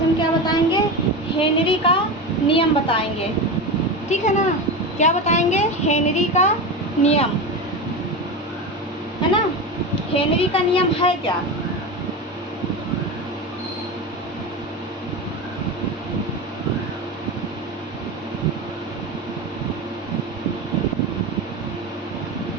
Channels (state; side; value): normal; both; correlation 0.22